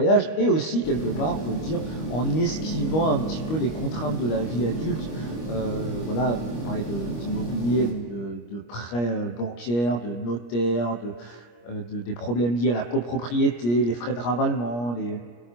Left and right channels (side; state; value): right; late; 25 ms